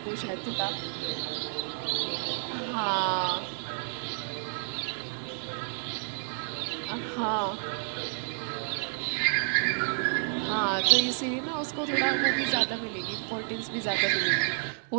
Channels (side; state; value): left; silent; 58 dB below the other